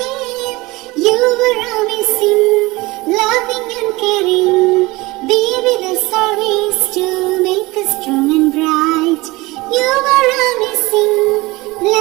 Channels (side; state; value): left; quieter; 21.7 dB